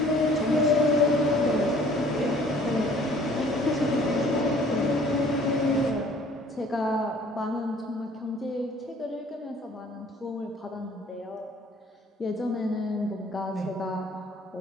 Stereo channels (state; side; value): normal; both; correlation 0.55